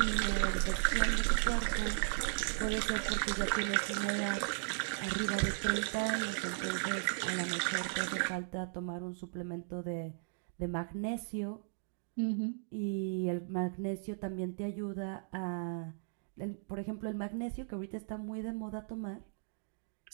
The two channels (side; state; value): left; silent; digital silence